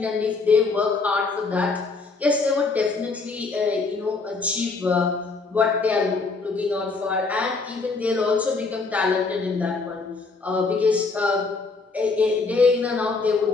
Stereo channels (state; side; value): quieter; right; 4.1 dB